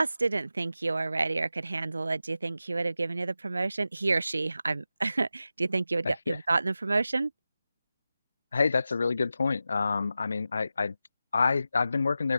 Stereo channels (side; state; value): both; inverted; correlation -0.92